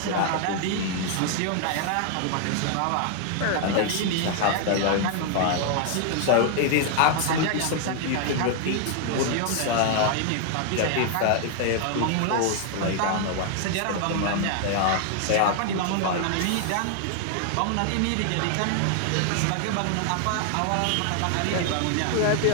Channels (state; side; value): different; both; correlation 0.00